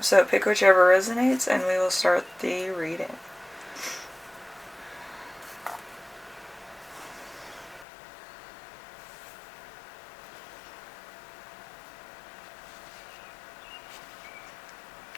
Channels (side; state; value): right; drops out; at 7.9 s